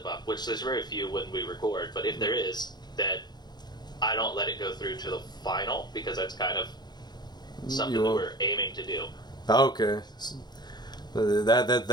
up, which there's very few when we record, but if there is, that I don't let it go through to the final, because that's kind of something that we're aiming to do. Okay.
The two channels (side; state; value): right; late; 0.20 ms